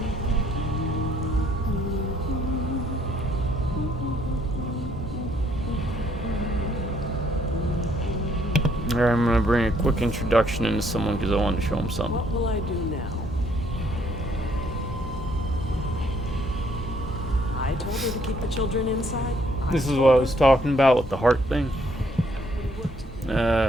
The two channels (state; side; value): normal; both; correlation 0.67